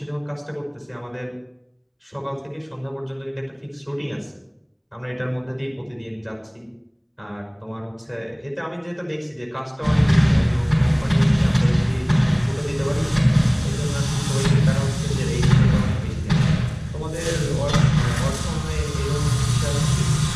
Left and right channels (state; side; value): identical; both; correlation 1.00